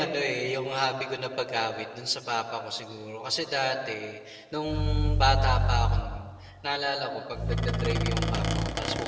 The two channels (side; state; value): both; identical; correlation 1.00